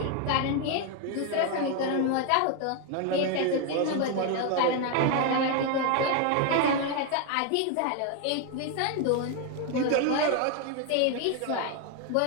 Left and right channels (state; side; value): different; both; correlation 0.01